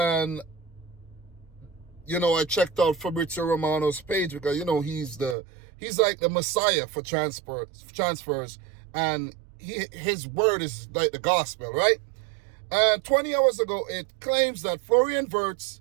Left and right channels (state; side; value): drops out; left; at 5.4 s